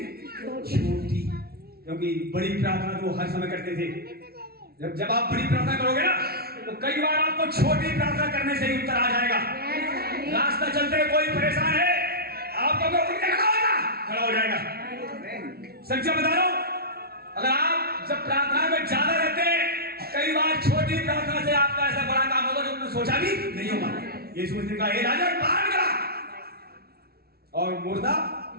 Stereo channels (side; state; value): left; late; 0.45 ms